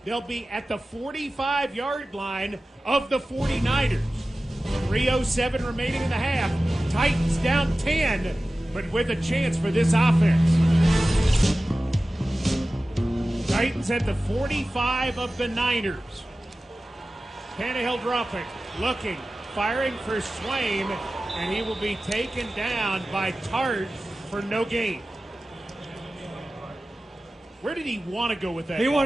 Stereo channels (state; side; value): normal; both; correlation 0.95